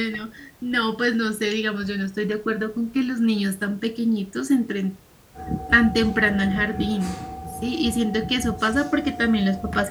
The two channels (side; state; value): both; identical; correlation 1.00